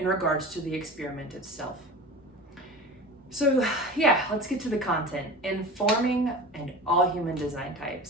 regards to the experiment itself. So yeah, let's get to the content. Informing and all human design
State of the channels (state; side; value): normal; both; correlation 0.34